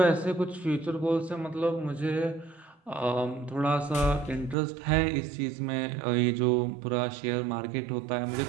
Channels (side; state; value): left; drops out; at 4.5 s